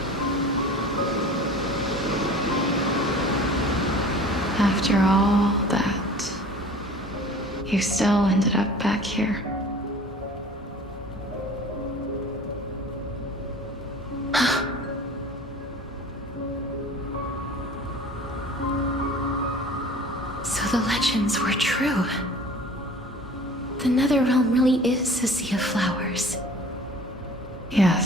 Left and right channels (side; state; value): both; normal; correlation 0.44